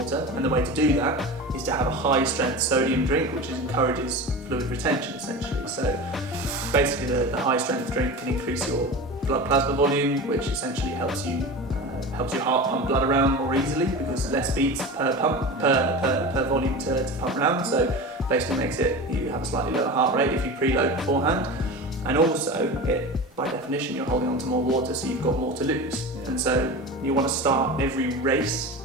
and the way to do that is to have a high strength sodium drink, which encourages fluid retention essentially. So basically the high strength drink can increase your blood plasma volume, which essentially helps your heart pump blood around more easily because less beats per pump per volume to pump around. So basically makes it you have a slightly lower heart rate if you preload beforehand, and also by definition you're holding on to more water, so you've got more to lose. And so you want to start every race,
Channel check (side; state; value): both; normal; correlation 0.30